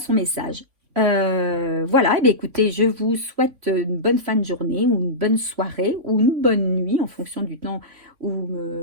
message. Voilà, et bien écoutez, je vous souhaite une bonne fin de journée ou une bonne soirée ou une bonne nuit en fonction du temps où vous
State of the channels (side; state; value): left; late; 3.5 ms